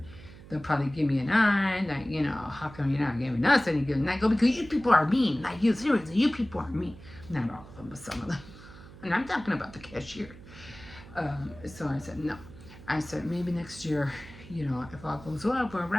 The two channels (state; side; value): noise; right; hum, 18 dB below the sound